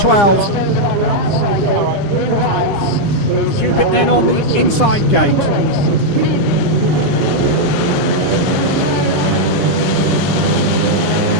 Cupitt then on the inside gate.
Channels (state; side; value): late; right; 9.8 ms